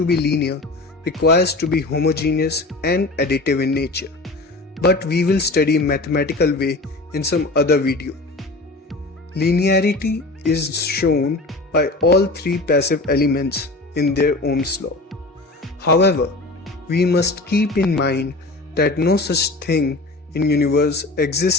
be linear requires to be homogeneous and additive in nature, but we will study mathematical way in some other video. Linearity is shown by all three passive elements in their Ohm's law. However, we must keep in mind that no such thing in universe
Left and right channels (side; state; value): right; quieter; 3.0 dB